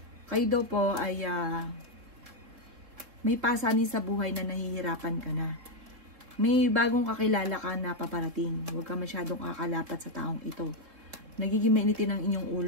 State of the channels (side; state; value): left; late; 3.7 ms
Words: kayo daw po ay may pasanin sa buhay na nahihirapan ka na. May bagong kakilala ka na paparating. Huwag ka masyadong kakalapat sa taong ito. Nagiging mainitin ang inyong